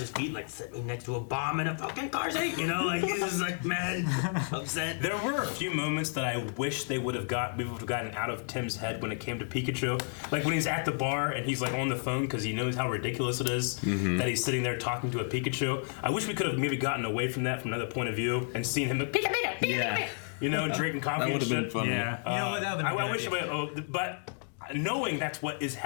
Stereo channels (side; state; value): right; silent; 56 dB below the other